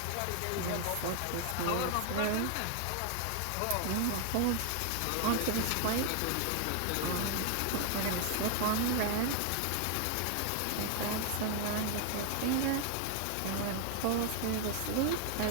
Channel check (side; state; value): both; different; correlation 0.00